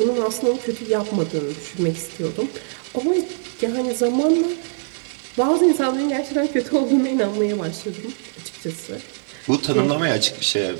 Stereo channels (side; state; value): left; silent; 63 dB below the other